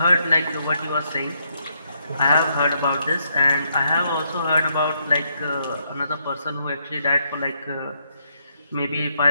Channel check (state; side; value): inverted; both; correlation -0.75